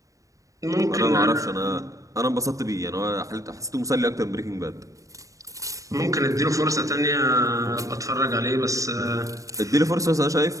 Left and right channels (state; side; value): late; left; 0.16 ms